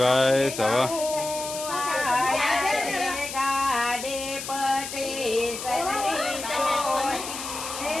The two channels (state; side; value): noise; left; hiss, 8 dB below the sound